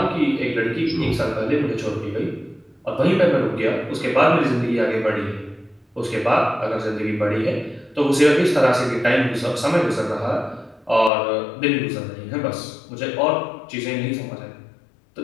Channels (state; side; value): drops out; right; at 11.1 s